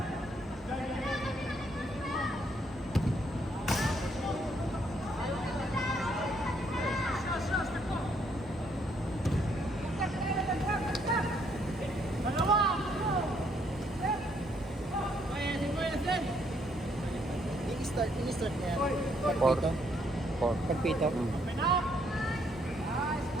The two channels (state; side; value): normal; both; correlation 0.70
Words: Ini-start niya. Four. Pagpito. Four. Pagpito.